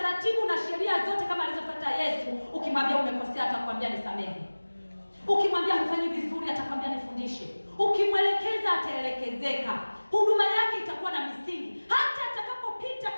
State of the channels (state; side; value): inverted; both; correlation -1.00